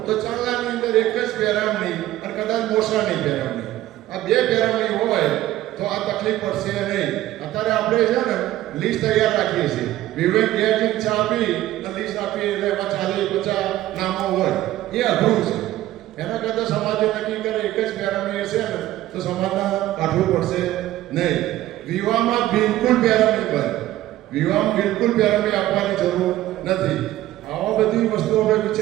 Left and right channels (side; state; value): left; quieter; 14.8 dB